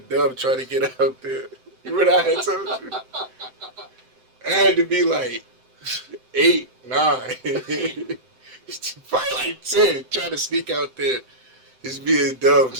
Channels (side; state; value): left; late; 7.8 ms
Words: dumb trying to get out there. You know what I had told you? I had to be like 8, 9, probably like 10, trying to sneak out there. Just being dumb,